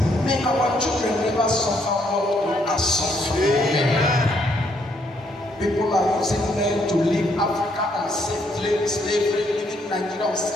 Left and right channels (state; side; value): normal; both; correlation 0.71